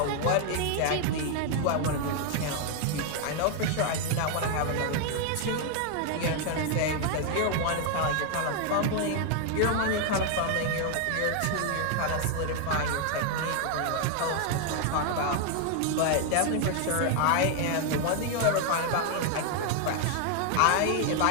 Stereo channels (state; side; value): different; both; correlation 0.00